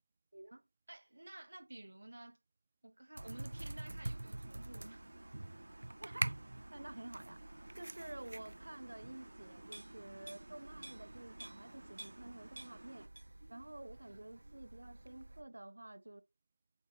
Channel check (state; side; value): inverted; both; correlation -1.00